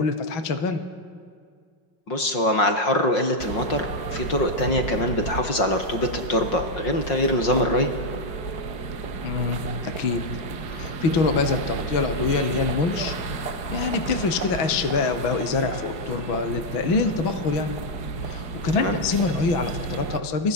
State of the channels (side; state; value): right; late; 5.5 ms